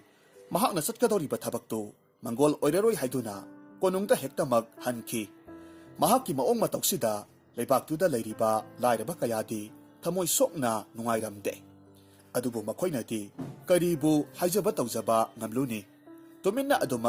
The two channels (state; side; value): identical; both; correlation 1.00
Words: mahakna chatkadoriba thabaktu mangol oiraroi haiduna konungda hektamak hanki. Mahakki maong matoksida leibaktuda leiriba lairaba kayadi thamoi sokna nungairamde. Adubu makoinati karibu haijaba tawjaba ngamluni tuminna